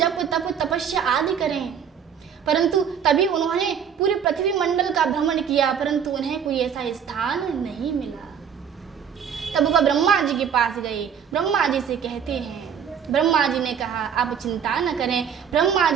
तप तपस्या आदि करें। परंतु तभी उन्होंने पूरे पृथ्वी मंडल का भ्रमण किया, परंतु उन्हें कोई ऐसा स्थान नहीं मिला। तब वह ब्रह्मा जी के पास गए। ब्रह्मा जी से कहते हैं, ब्रह्मा जी ने कहा आप चिंता न करें। ब्रह्मा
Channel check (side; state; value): left; quieter; 7.7 dB